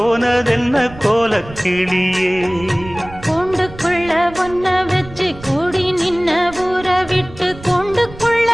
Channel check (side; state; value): right; noise; rumble, 17 dB below the sound